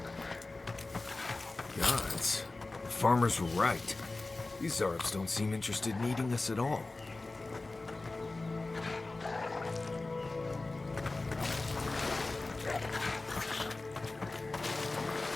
Gods. The farmers were right. These Zarops don't seem interested in eating us at all.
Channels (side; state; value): right; quieter; 3.3 dB